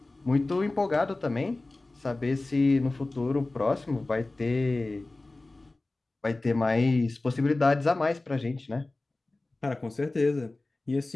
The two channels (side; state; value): right; quieter; 3.0 dB